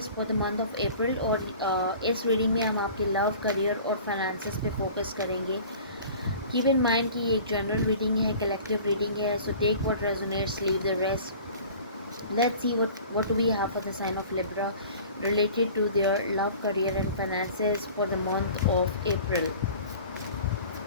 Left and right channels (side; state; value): both; inverted; correlation -0.44